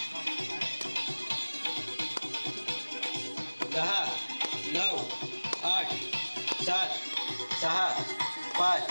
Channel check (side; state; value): both; inverted; correlation -1.00